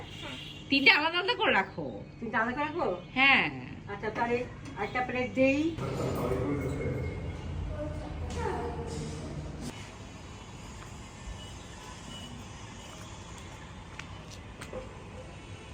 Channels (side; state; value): both; identical; correlation 1.00